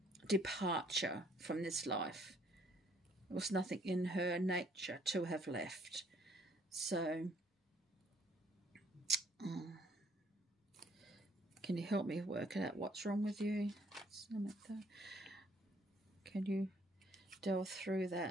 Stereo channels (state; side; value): normal; both; correlation 0.64